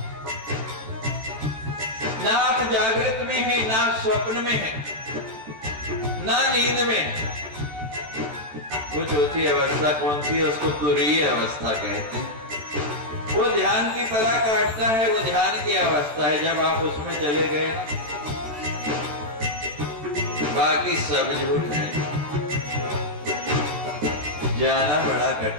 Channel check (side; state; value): left; late; 13 ms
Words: ना आप जागृत में है, ना स्वप्न में है, ना नींद में है। वो चौथी अवस्था कौन सी है? उसको तुरीय अवस्था कहते हैं। वो ध्यान की परा काटता है, वो ध्यान की अवस्था है। जब आप उसमें चले गए, बाकी सब झूठ है। जाना बड़ा